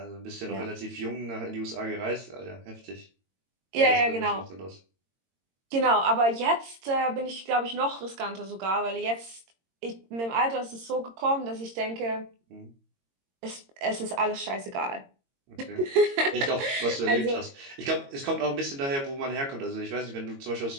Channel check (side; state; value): left; late; 22 ms